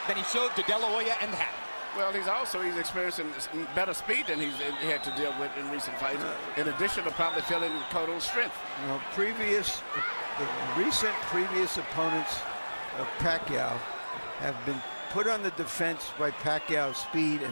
than he showed to De La Hoya and Hatton. Well, he's experiencing better speed than he had to deal with in recent fights, in addition to probably feeling Cotto's strength. You know, the recent previous opponents of Pacquiao have been put on the defense by Pacquiao's speed,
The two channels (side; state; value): both; inverted; correlation -1.00